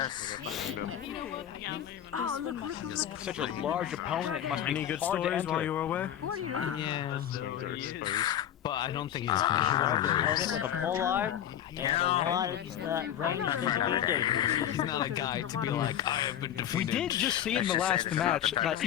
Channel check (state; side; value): quieter; right; 10.6 dB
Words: Such a large opponent must be Any good hard to stories enter. while you were away? Yeah. But I don't think he's Opponent with a full arm and a lot of range that can be dangerous. He's not a guy to be like, I have been defeated. We did just see in the last match that